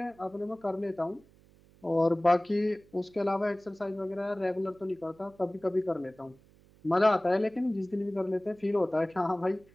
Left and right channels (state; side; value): noise; right; hum, 28 dB below the sound